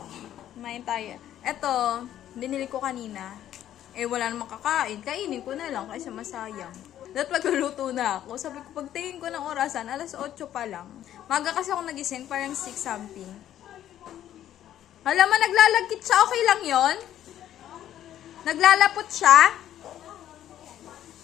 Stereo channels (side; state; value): right; quieter; 11.6 dB